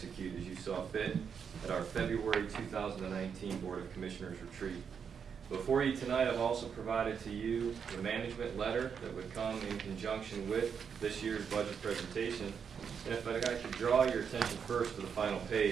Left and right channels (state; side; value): quieter; left; 6.9 dB